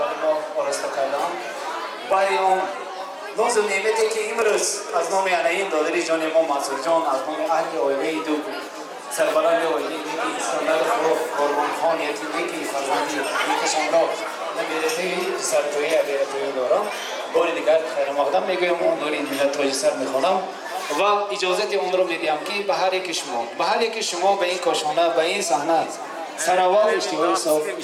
ما آراسته کردند، برای آن ناز و نعمتی که امروز از نام انعین دادر جان ما منصور جان، از نام اهل آیله دو سربلند اویلی نیکی اسکندر قربان خان یکی نیکی فرزندی نیکشان را نمیرته سرتویی بیرتویی دارم. بار دیگر خیر مقدم میگویم اون نوری ملت تاج سر میخوانم و اجازت اون رو میدیم که به هر یک شما به این کاشانه به این صحنه سراوات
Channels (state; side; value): identical; both; correlation 1.00